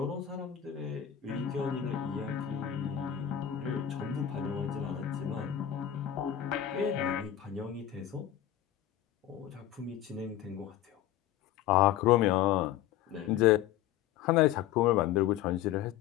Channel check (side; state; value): right; quieter; 11.3 dB